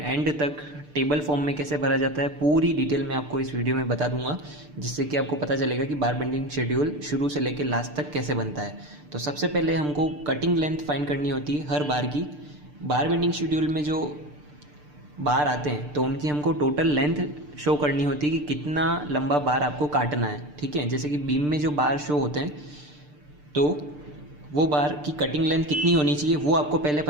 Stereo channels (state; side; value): late; left; 6.7 ms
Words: तक टेबल फॉर्म में कैसे भरा जाता है पूरी डिटेल में आपको इस वीडियो में बता दूंगा, जिससे कि आपको पता चलेगा कि बार बेंडिंग शेड्यूल शुरू से लेकर लास्ट तक कैसे बनता है। तो सबसे पहले हमको कटिंग लेंथ फाइंड करनी होती है हर बार की। बार बेंडिंग शेड्यूल में जो बार आते हैं तो उनकी हमको टोटल लेंथ शो करनी होती है कि कितना लंबा बार आपको काटना है। ठीक है, जैसे कि बीम में जो बार शो होते हैं तो वो बार की कटिंग लेंथ कितनी होनी चाहिए वो आपको पहले